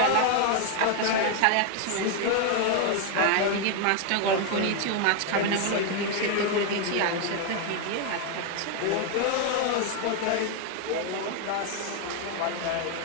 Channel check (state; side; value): different; both; correlation 0.01